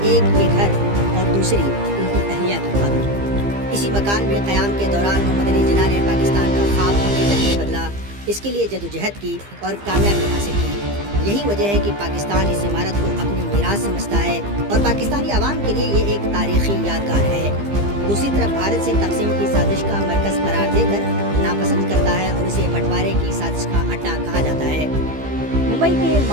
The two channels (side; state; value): left; late; 15 ms